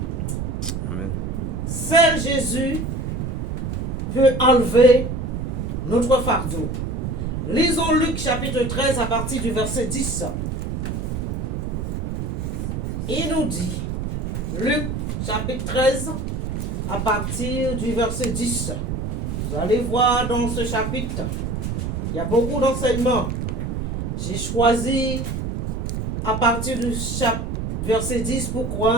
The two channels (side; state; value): right; noise; rumble, 2 dB below the sound